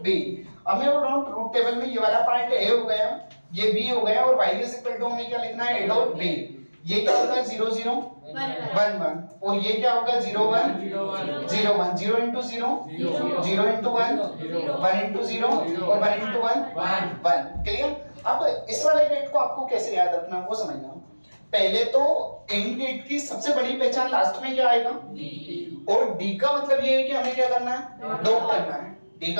b। अब मैं बोल रहा हूँ ट्रूथ टेबल में ये वाला पार्ट a हो गया, ये b हो गया, और y इज इक्वल टू हमें क्या लिखना है, a डॉट b। ये क्या होगा 0 0 1 1, और ये क्या होगा 0 1 0 1, 0 into 0 0 into 1 1 into 0 और 1 into 1 1, क्लियर। अब इस वाले गेट को आपको कैसे याद रखना वो समझना। पहले तो एंड गेट की सबसे बड़ी पहचान लास्ट में क्या आएगा, और डी का मतलब ये है कि हमें क्या करना है, डॉट करना है। डी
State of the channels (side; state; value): both; inverted; correlation -1.00